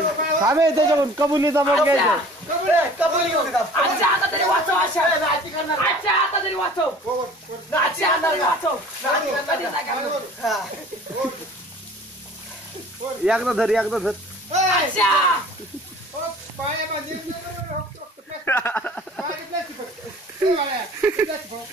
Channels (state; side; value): normal; both; correlation 0.47